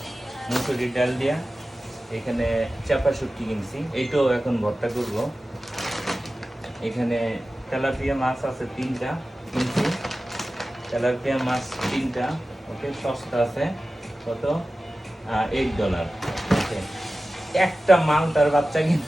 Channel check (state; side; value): normal; both; correlation 0.95